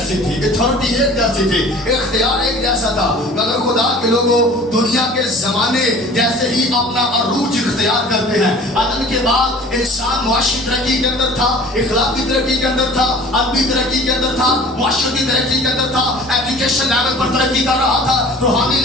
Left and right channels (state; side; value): normal; both; correlation 0.45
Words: تھی, اتھارٹی ایک جیسی تھی, اختیار ایک جیسا تھا. مگر خدا کے لوگوں دنیا کے زمانے جیسے ہی اپنا عروج اختیار کرتے ہیں. آدم کے بعد انسان معاشی ترقی کے اندر تھا, اخلاقی ترقی کے اندر تھا, ادبی ترقی کے اندر تھا, معاشرتی ترقی کے اندر تھا, ایجوکیشن لیول پر ترقی کر رہا تھا, روحانی